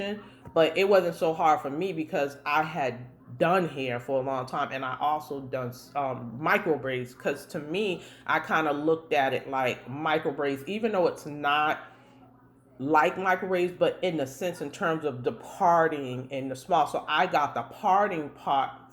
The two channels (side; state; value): both; identical; correlation 1.00